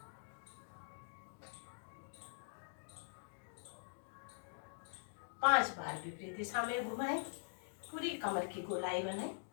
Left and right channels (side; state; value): right; silent; digital silence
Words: 5 बार विपरीत दिशा में घुमाएं, पूरी कमर की गोलाई बनाएं।